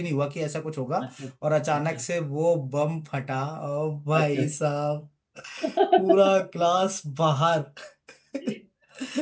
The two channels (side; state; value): both; identical; correlation 1.00